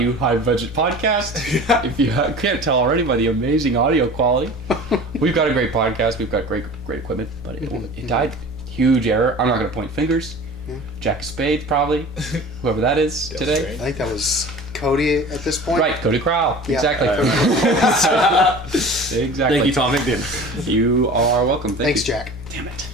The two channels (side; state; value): both; normal; correlation 0.39